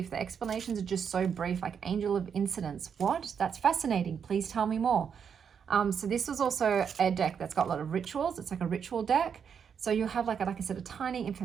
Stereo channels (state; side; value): quieter; left; 7.2 dB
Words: The explanations are just so brief, like Angel of Incidents. What? That's fascinating. Please tell me more. So this was also a deck that's got a lot of rituals. It's like a ritual deck. So you have like I said, a tiny